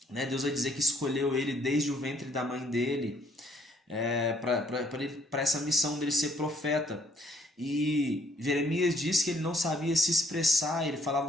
né, Deus vai dizer que escolheu ele desde o ventre da mãe dele, para essa missão dele ser profeta. E Jeremias diz que ele não sabia se expressar, ele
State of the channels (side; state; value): both; normal; correlation 0.65